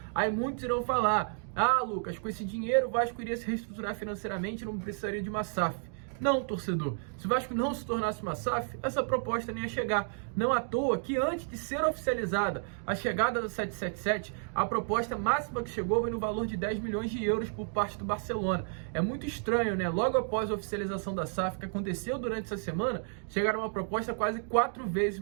Aí muitos irão falar, Lucas, com esse dinheiro o Vasco iria se reestruturar financeiramente e não precisaria de uma SAF. Não, torcedor, se o Vasco não se tornasse uma SAF, essa proposta nem ia chegar. Não à toa que antes de ser oficializada a chegada do 777, a proposta máxima que chegou foi no valor de 10 milhões de euros por parte do Barcelona. É muito estranho, né? Logo após a oficialização da SAF, que aconteceu durante essa semana, chegaram uma proposta quase 4 vezes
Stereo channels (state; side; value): silent; left; 57 dB below the other